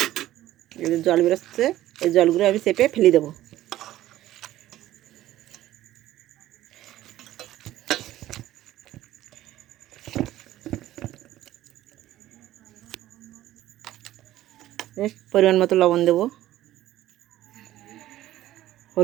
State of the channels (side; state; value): left; quieter; 14.3 dB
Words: এদের জল বেরোচ্ছে, এই জলগুলো আমি চেপে ফেলে দেবো। পরিমাণ মতো লবণ দেবো।